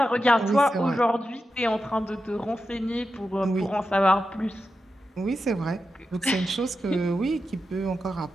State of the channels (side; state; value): both; normal; correlation 0.90